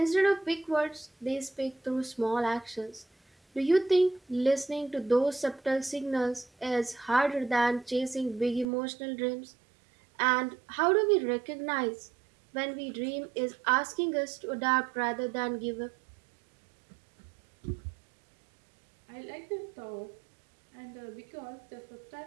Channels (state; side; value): drops out; left; at 8.7 s